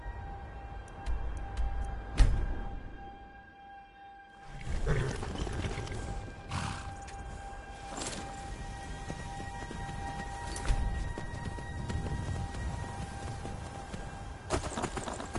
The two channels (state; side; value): identical; both; correlation 1.00